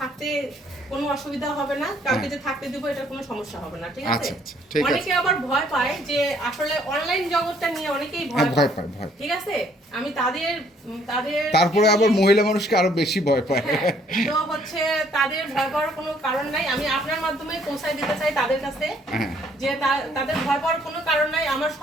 কোনো অসুবিধা হবে না। কাউকে যে থাকতে দিব এটা কোনো সমস্যা হবে না। ঠিক আছে, আচ্ছা, আচ্ছা, ঠিক আছে। অনেকে আবার ভয় পায় যে আসলে অনলাইন জগৎটা নিয়ে অনেকেই হ্যাঁ, ভয় ভয় পায়। পায়। ঠিক আছে, আমি তাদের তারপরে আবার মহিলা মানুষকে আরো বেশি ভয় পায়। হ্যাঁ, তো হচ্ছে তাদের ভয় পাওয়ার কোনো কারণ নাই। আমি আপনার মাধ্যমে পৌঁছায় দিতে চাই তাদের কাছে হ্যাঁ। যে তাদের ভয় পাওয়ার কোনো কারণ নাই। আমার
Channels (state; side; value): normal; both; correlation 0.64